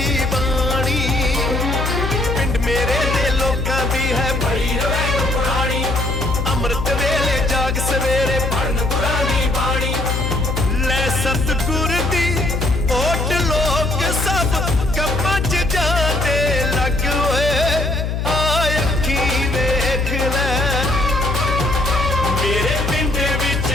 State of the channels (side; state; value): left; noise; hum, 1 dB below the sound